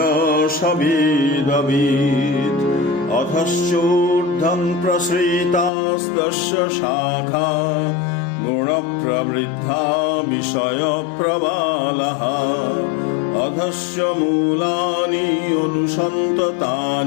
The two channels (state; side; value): drops out; right; at 5.7 s